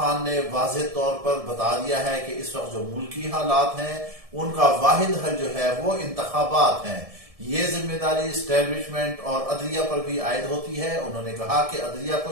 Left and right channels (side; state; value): left; late; 1.7 ms